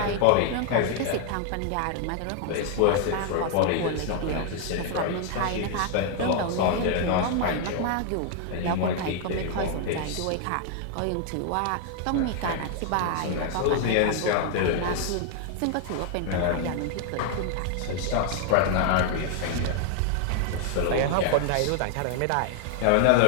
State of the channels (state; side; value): different; both; correlation 0.00